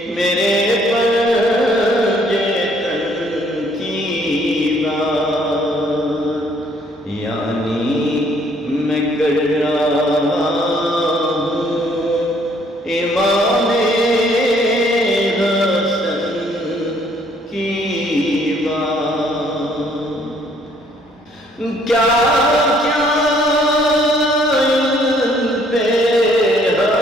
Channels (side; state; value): both; normal; correlation 0.64